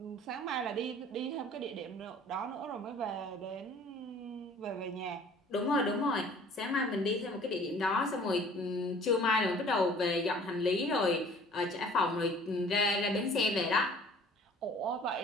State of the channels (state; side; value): normal; both; correlation 0.51